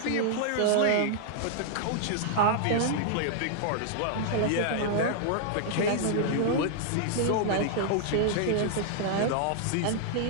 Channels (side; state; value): both; different; correlation -0.01